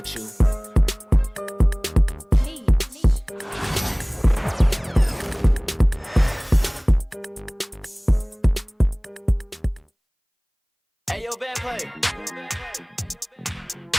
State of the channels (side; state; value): both; identical; correlation 1.00